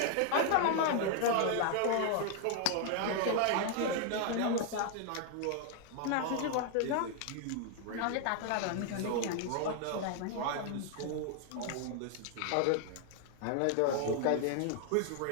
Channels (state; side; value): different; both; correlation 0.00